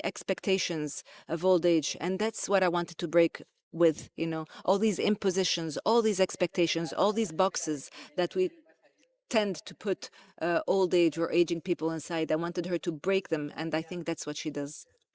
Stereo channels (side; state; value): both; identical; correlation 1.00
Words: expectations of old age. And that's what I wanted to break with, all these impositions, all these expectations, all these boxes that we tend to put old age or aging people inside. I wanted her to break them, and I think that's what she does.